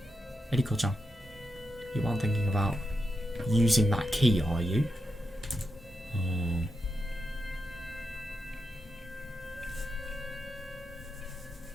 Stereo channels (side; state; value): both; normal; correlation 0.87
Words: Eddie-chan, you aren't thinking about using that key, are you?